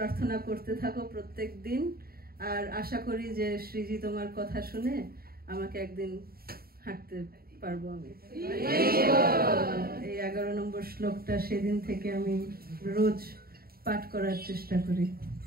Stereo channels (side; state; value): left; late; 0.44 ms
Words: করতে থাকো প্রত্যেক দিন, আর আশা করি যে শ্রীজি তোমার কথা শুনে আমাকে একদিন হাঁটতে পারবো আমি। এই 11 নম্বর শ্লোকটা সেদিন থেকে আমি রোজ পাঠ করার চেষ্টা করি।